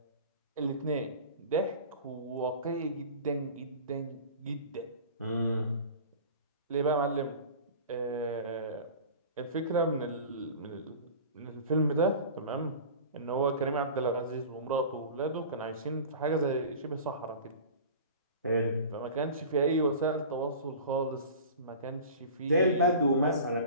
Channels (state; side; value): inverted; both; correlation -0.38